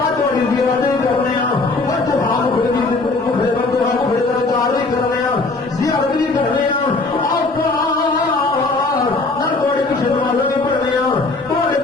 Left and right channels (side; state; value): right; quieter; 3.5 dB